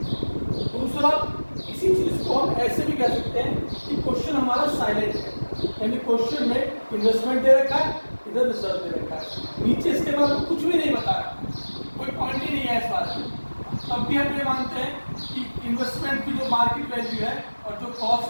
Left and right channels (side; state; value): both; inverted; correlation -1.00